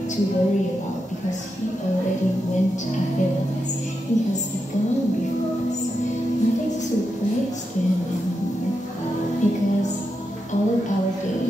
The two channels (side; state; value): both; normal; correlation 0.86